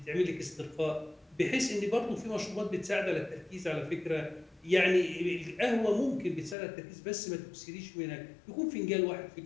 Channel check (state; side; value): drops out; right; at 6.6 s